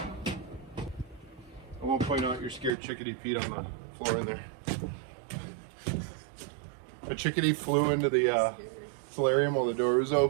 won't point out your scared chickadee feet on the floor in there. A chickadee flew into the solarium while the door was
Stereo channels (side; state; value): left; drops out; at 2.7 s